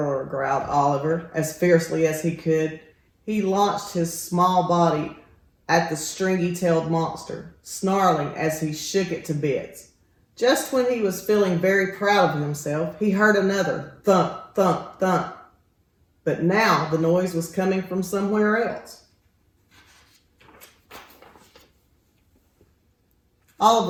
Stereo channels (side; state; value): both; identical; correlation 1.00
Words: growled Oliver as fiercely as he could. He launched his small body at the stringy-tailed monster, snarling as he shook it to bits. Just when he was feeling very proud of himself, he heard another thump, thump, thump. But now the noise was coming from somewhere else.